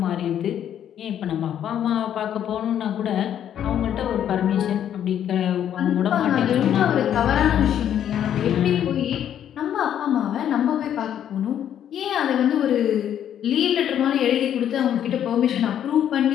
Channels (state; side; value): quieter; right; 10.0 dB